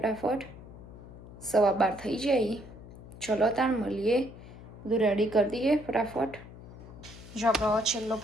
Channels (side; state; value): left; noise; hum, 16 dB below the sound